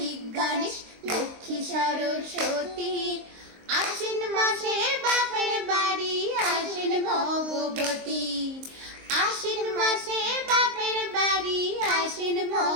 গণেশ লক্ষ্মী সরস্বতী। আশ্বিন মাসে বাপের বাড়ি আসেন ভগবতী। আশ্বিন মাসে বাপের বাড়ি আসেন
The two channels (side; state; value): left; late; 23 ms